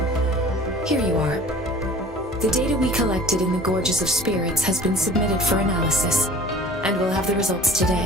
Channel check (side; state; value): both; normal; correlation 0.45